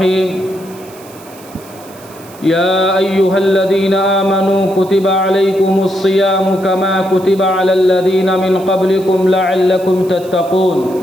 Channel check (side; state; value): right; noise; hiss, 22 dB below the sound